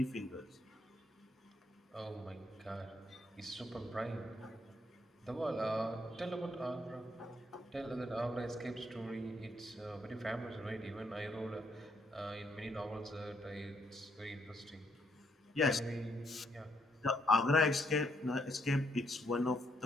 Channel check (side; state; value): both; normal; correlation 0.74